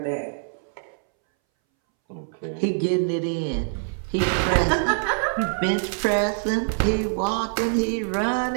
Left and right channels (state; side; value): silent; left; 61 dB below the other